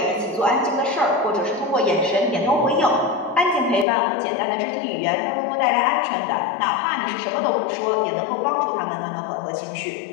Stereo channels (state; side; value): drops out; right; at 3.9 s